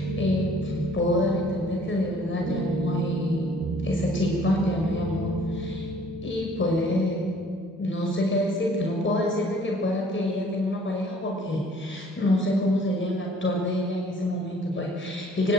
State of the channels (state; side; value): normal; both; correlation 0.56